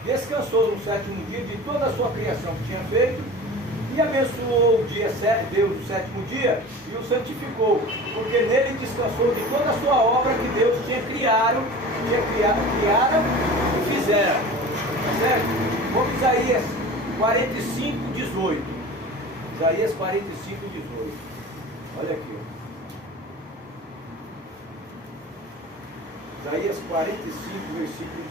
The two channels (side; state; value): both; normal; correlation 0.37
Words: descansou no sétimo dia de toda a sua criação que tinha feito, e abençoou o dia, Deus o sétimo dia, e o santificou, porque nele descansou de toda a sua obra que Deus tinha criado e fizera. Tá certo? Vamos Isaías 45, 18. Isaías 45, 18. Olha aqui. Isaías 45, versículo